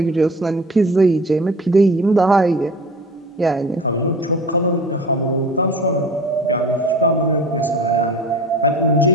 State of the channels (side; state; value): both; normal; correlation 0.39